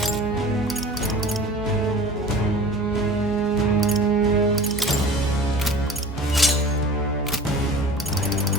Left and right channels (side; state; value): both; normal; correlation 0.40